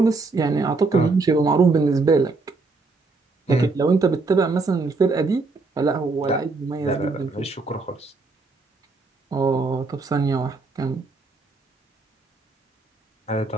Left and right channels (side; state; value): left; quieter; 3.8 dB